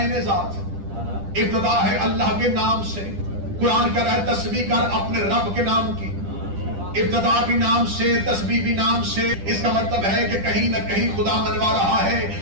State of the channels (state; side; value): late; left; 10 ms